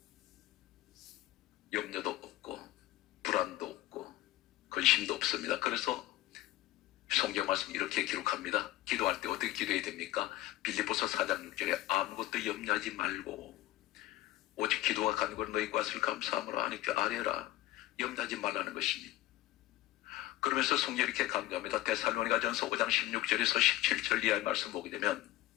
염려도 없고 불안도 없고 근심도 없습니다. 그래서 성경 말씀 이렇게 기록합니다. 기도할 때 어떻게 기도해야 됩니까? 빌립보서 4장 6절에 아무것도 염려하지 말고 오직 기도와 간구로 너희 것을 감사함으로 하나님께 아뢰라. 염려하지 말라는 것입니다. 그러면서 성경이 이렇게 강조합니다. 데살로니가전서 5장 16절에서 17절 이하의 말씀 보게 되면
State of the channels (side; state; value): right; quieter; 16.1 dB